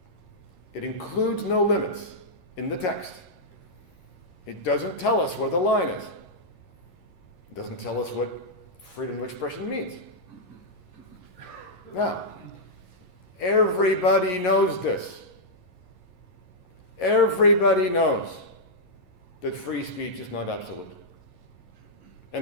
It includes no limits in the text. It doesn't tell us where the line is. It doesn't tell us what freedom of expression means. Now, everybody knows this. Everybody knows that free speech is not absolute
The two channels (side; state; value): right; late; 11 ms